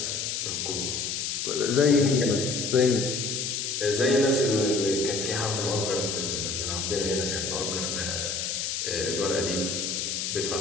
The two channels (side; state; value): left; noise; hiss, 2 dB below the sound